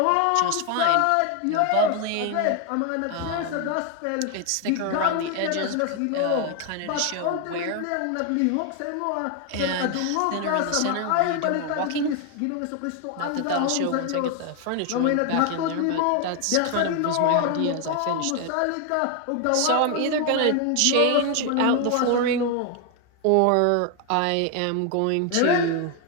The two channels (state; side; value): different; both; correlation 0.01